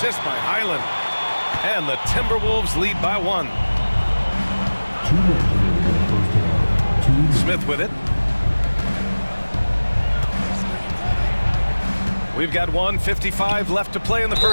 by Highland. And the Timberwolves lead by 1. Smith with it. We've got 1:55 left to play in the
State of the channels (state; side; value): inverted; both; correlation -1.00